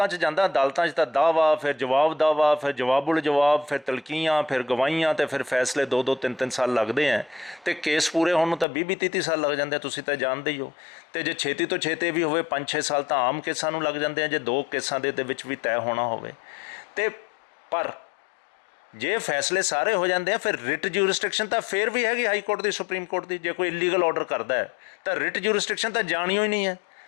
'ਚ ਜਾਂਦਾ, ਅਦਾਲਤਾਂ 'ਚ ਤਾਂ ਦਾਅਵਾ, ਫਿਰ ਜਵਾਬ ਦਾਅਵਾ, ਫਿਰ ਜਵਾਬੁਲ ਜਵਾਬ, ਫਿਰ ਤਲਕੀਆਂ, ਫਿਰ ਗਵਾਹੀਆਂ, ਅਤੇ ਫਿਰ ਫੈਸਲੇ 2-2 3-3 ਸਾਲ ਲੱਗਦੇ ਹੈ। ਅਤੇ ਕੇਸ ਪੂਰੇ ਹੋਣ ਨੂੰ ਤਾਂ 20-30 ਸਾਲ ਲੱਗ ਜਾਂਦੇ, ਤੁਸੀਂ ਤਾਂ ਜਾਣਦੇ ਹੀ ਹੋ। ਅਤੇ ਜੇ ਛੇਤੀ ਤੋਂ ਛੇਤੀ ਵੀ ਹੋਵੇ 5-6 ਸਾਲ ਤਾਂ ਆਮ ਕੇਸਾਂ ਨੂੰ ਲੱਗ ਜਾਂਦੇ ਆ, ਜੇ 2 ਕੇਸਾਂ ਦੇ ਵਿੱਚ ਵੀ ਤੈਅ ਹੋਣਾ ਹੋਵੇ। ਅਤੇ ਪਰ ਜੇ ਫੈਸਲੇ ਸਾਰੇ ਹੋ ਜਾਂਦੇ ਆ, ਫਿਰ ਰਿਟ ਜੂਰਿਸਡਿਕਸ਼ਨ ਤਾਂ ਫਿਰ ਵੀ ਹੈਗੀ ਹਾਈ ਕੋਰਟ ਦੀ, ਸੁਪਰੀਮ ਕੋਰਟ ਦੀ। ਜੇ ਕੋਈ ਇਲੀਗਲ ਆਰਡਰ ਕਰਦਾ ਹੈ ਤਾਂ ਰਿਟ ਜੂਰਿਸਡਿਕਸ਼ਨ ਤਾਂ ਜਾਣਿਓ ਹੀ ਨਹੀਂ ਹੈ।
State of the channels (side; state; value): right; drops out; at 8.7 s